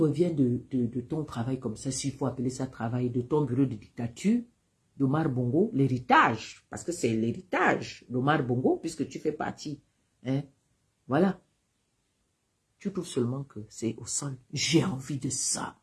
de ton travail comme ça, s'il faut appeler ça travail, de ton bureau de dictature, d'Omar Bongo, l'héritage, parce que c'est l'héritage d'Omar Bongo, puisque tu fais partie. Hein? Voilà. Tu trouves seulement que c'est au sol. J'ai envie de ça.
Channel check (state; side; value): identical; both; correlation 1.00